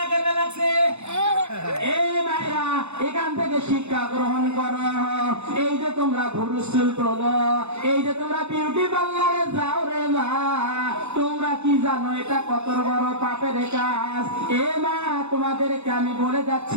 করতে লাগছে। এই মায়েরা, এখান থেকে শিক্ষা গ্রহণ করো। এই যে তোমরা ভুরু চুল তোলো, এই যে তোমরা বিউটি পার্লারে যাও রে মা, তোমরা কি জানো এটা কত বড় পাপের কাজ? এ মা, তোমাদেরকে আমি বলে যাচ্ছি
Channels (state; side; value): late; left; 0.81 ms